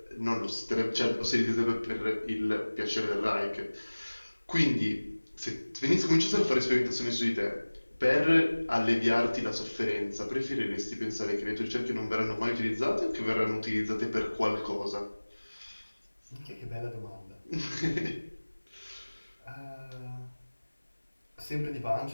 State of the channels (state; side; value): inverted; both; correlation -1.00